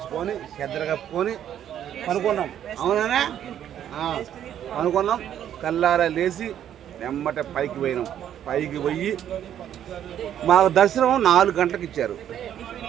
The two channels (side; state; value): left; quieter; 10.3 dB